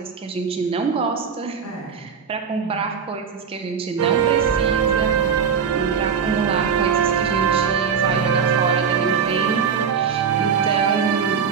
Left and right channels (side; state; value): left; quieter; 6.6 dB